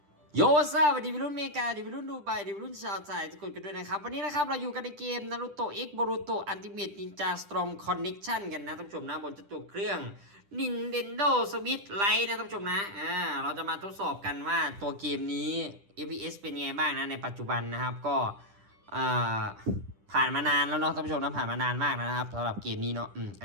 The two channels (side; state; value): left; late; 10 ms